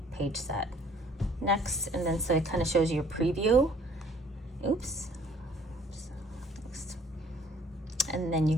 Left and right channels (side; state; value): both; normal; correlation 0.57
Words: page set. Next, and then so it kind of shows you your preview. Oops. Next. And then you